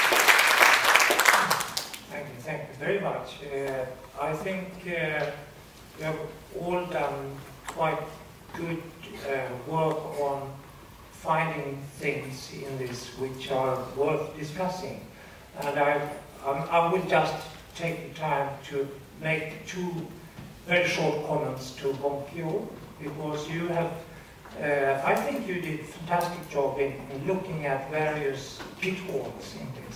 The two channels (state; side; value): identical; both; correlation 1.00